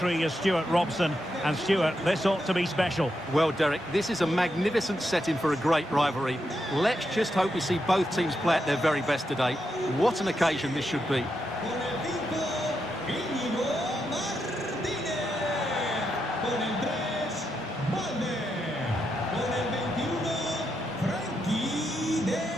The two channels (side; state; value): both; normal; correlation 0.83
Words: is Stuart Robson. And Stuart, this ought to be special. Well, Derek, this is a magnificent setting for a great rivalry. Let's just hope we see both teams play at their very best today. What an occasion this should be.